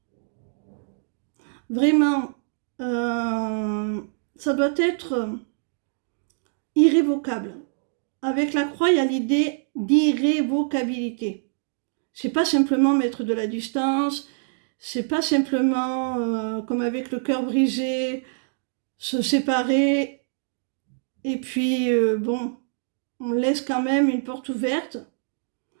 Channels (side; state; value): left; silent; digital silence